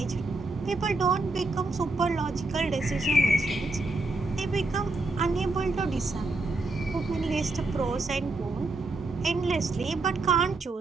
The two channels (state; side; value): quieter; left; 3.1 dB